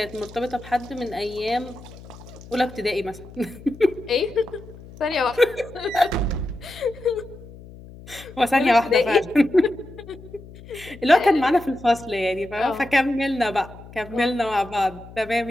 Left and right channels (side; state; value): left; noise; hum, 18 dB below the sound